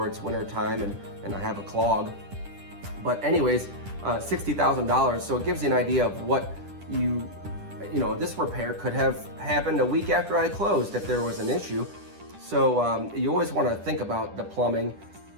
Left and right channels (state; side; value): late; left; 10 ms